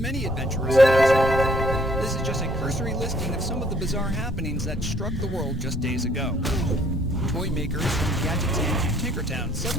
adventurers in Azeroth. This is just a cursory listing of some of the bizarre happenings that struck the world just days ago. Toy makers from Gadget Town to Tinkertown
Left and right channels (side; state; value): both; normal; correlation 0.62